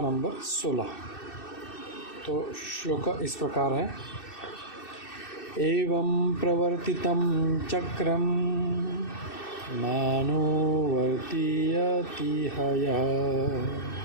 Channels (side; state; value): right; late; 2.6 ms